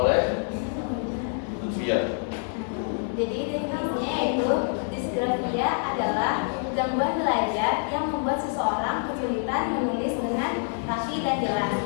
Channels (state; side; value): silent; right; 61 dB below the other